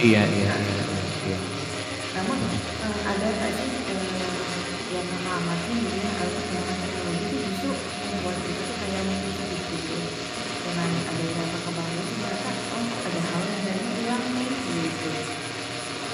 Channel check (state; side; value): identical; both; correlation 1.00